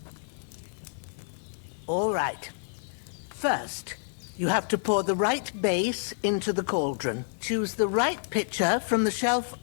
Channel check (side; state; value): right; silent; digital silence